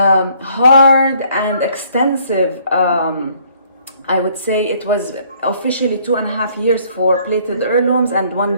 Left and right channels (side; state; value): both; inverted; correlation -0.63